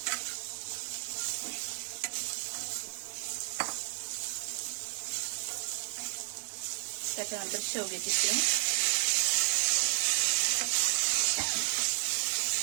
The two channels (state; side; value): silent; left; 56 dB below the other